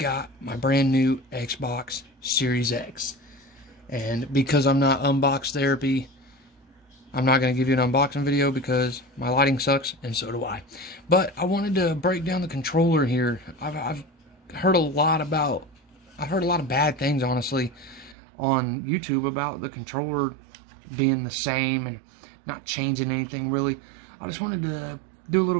my brand new Xbox Series X, and because I'm not unbox therapy, I'm not going to give you an unboxing video because my lighting sucks, and so do I. But I wanted to break down the controller here. I've heard a lot of bad things, honestly, on YouTube about the controller being the same and not changing anything really. I just wanted to do a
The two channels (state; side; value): drops out; left; at 18.2 s